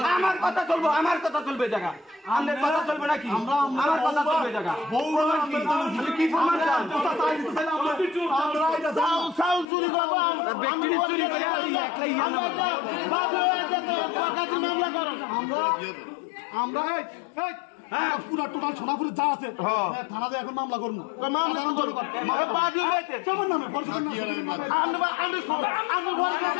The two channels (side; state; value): right; drops out; at 9.7 s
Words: আমার কথা চলবো, আমার কথা চলবে জায়গা, আমাদের কথা চলবে নাকি? আমার কথা চলবে জায়গা। কি প্রমাণ চান? পুরা টোটাল সোনাপুরে যা আছে থানাতে এখন মামলা করবো।